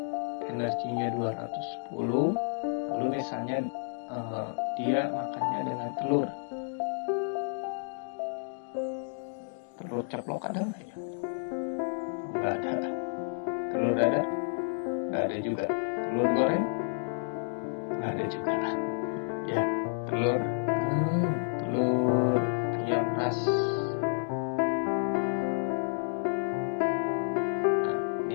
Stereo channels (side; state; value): right; silent; digital silence